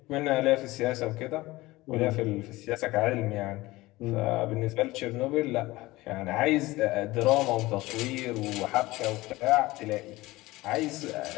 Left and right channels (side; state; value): right; quieter; 19.5 dB